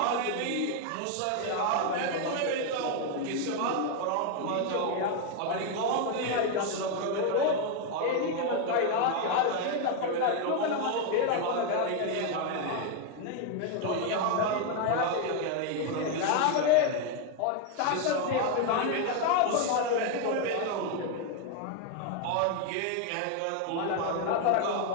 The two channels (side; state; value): both; different; correlation 0.01